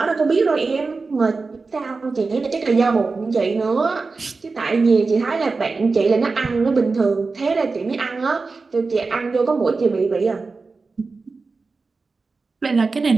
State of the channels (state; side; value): quieter; left; 4.1 dB